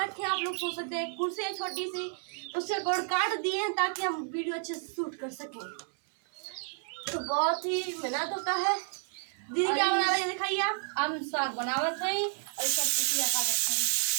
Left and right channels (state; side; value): silent; left; 57 dB below the other